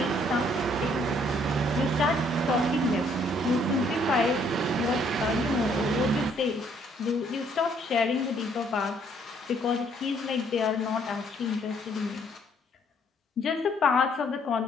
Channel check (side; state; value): both; normal; correlation 0.65